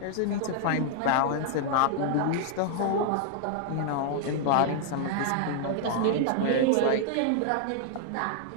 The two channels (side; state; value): both; different; correlation -0.01